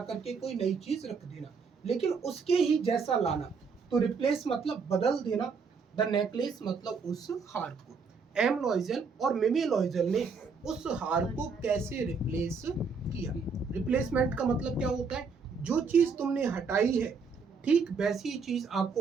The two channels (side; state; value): left; quieter; 5.1 dB